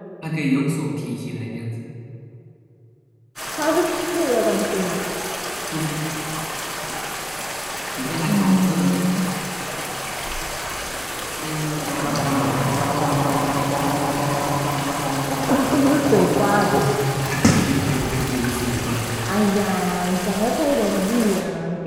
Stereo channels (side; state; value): both; identical; correlation 1.00